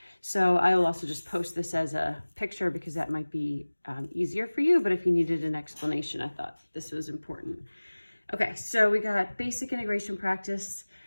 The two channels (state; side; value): inverted; both; correlation -1.00